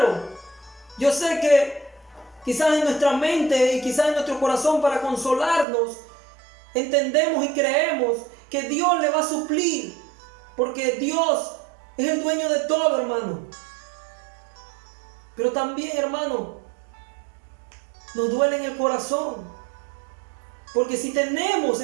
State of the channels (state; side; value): drops out; left; at 5.7 s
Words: yo sé que quizás en nuestra mente y quizás en nuestro corazón, para consolarnos, entendemos y creemos que Dios le va a suplir, porque Dios es el dueño de todo, hermano. Pero también, hermano, nos duele en el corazón, porque si tenemos,